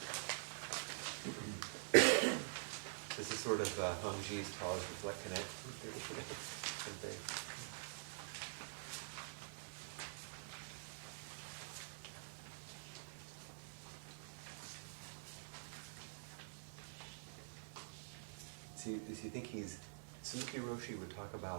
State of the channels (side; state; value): left; silent; digital silence